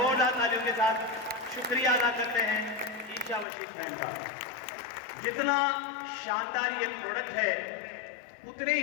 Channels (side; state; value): right; drops out; at 3.5 s